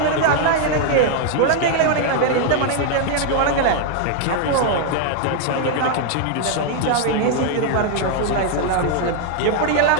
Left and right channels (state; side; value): different; both; correlation 0.00